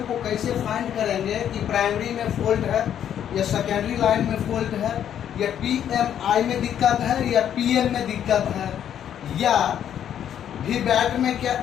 को कैसे फाइंड करेंगे कि प्राइमरी में फॉल्ट है या सेकेंडरी लाइन में फॉल्ट है या PMI में दिक्कत है या PM में दिक्कत है या VBAT में क्या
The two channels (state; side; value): quieter; right; 9.7 dB